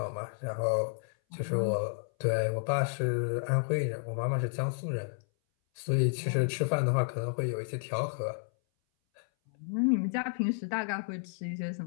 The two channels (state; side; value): silent; right; 57 dB below the other